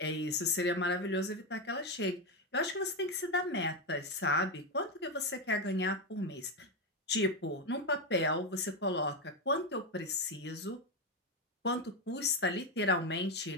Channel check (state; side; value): normal; both; correlation 0.09